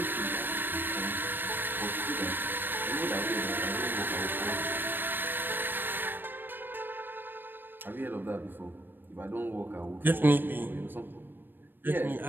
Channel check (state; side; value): late; left; 0.095 ms